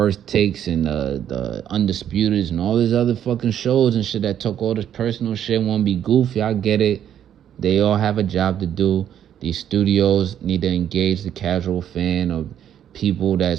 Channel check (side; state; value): left; quieter; 10.0 dB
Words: Takes and the Undisputeds and all these other fucking shows and shit that talk all this personal shit, want to be goofy. I get it. They all have a job to do. These studios need to engage the casual fan or people